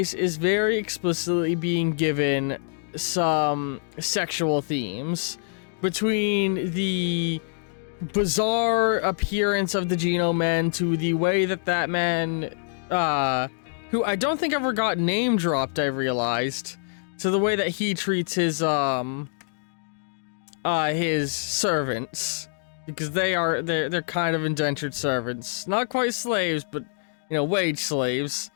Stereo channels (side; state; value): right; silent; digital silence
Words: is very explicitly being given some sexual themes between the bizarre appearance of the Genome Man to the way that man, who I don't think ever got name dropped, I realized, to the way that he treats his servants. Because they're kind of indentured servants. Not quite slaves, but, you know, wage slaves.